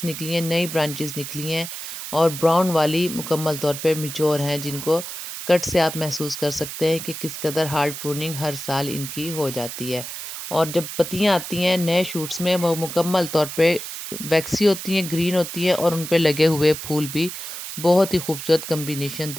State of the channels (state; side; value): noise; right; hiss, 8 dB below the sound